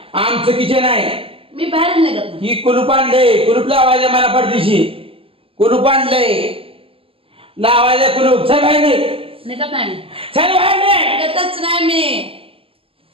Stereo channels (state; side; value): late; left; 0.27 ms